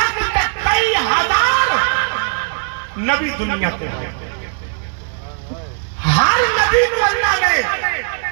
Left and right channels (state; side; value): silent; left; 65 dB below the other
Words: تک کئی ہزار نبی دنیا کے ہیں ہر نبی کو اللہ نے